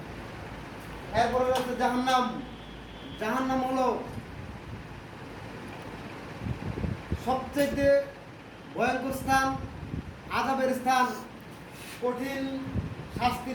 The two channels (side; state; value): both; identical; correlation 1.00